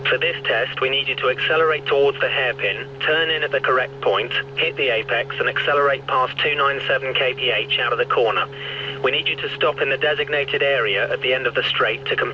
For this test, we need you to accelerate towards the hairpin, turn in at the correct point, hit the apex and accelerate past 297 kph out of the corner. We need you to stop in the designated area at the end of the straight to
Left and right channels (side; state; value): both; identical; correlation 1.00